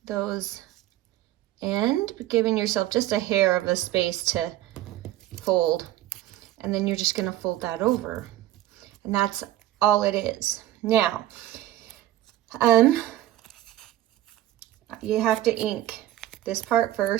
those end, giving yourself just a hair of a space to fold. And then you're just gonna fold that over. And that's all it is. Now, you have to ink this part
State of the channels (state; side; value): quieter; left; 14.2 dB